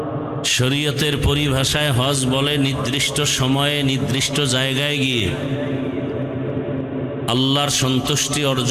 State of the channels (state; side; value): identical; both; correlation 1.00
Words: শরীয়তের পরিভাষায় হজ বলে নির্দিষ্ট সময়ে নির্দিষ্ট জায়গায় গিয়ে আল্লাহর সন্তুষ্টি